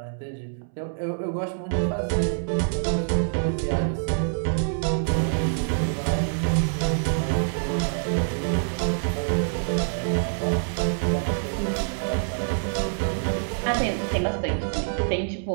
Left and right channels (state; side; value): silent; left; 61 dB below the other